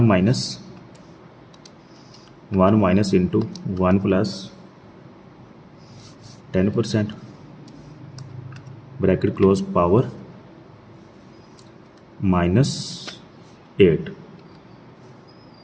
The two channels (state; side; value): identical; both; correlation 1.00